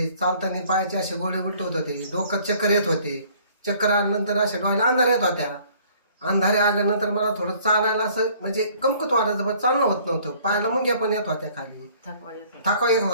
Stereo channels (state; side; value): inverted; both; correlation -0.57